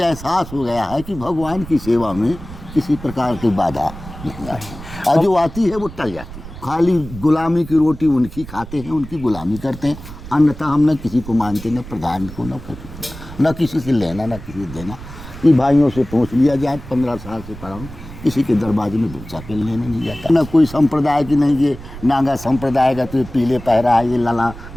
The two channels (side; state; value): right; noise; rumble, 14 dB below the sound